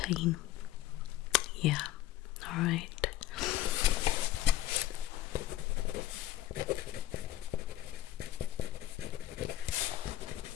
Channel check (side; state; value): right; quieter; 13.9 dB